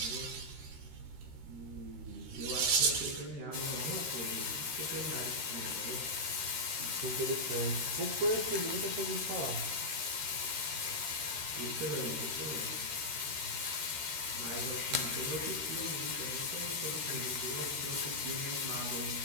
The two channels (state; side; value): late; left; 13 ms